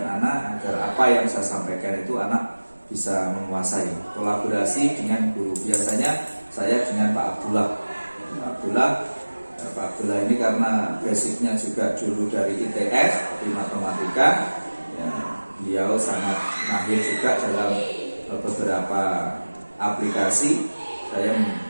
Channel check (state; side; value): inverted; both; correlation -1.00